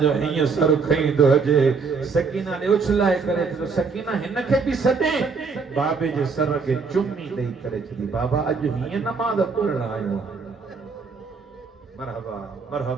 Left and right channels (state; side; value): quieter; left; 4.9 dB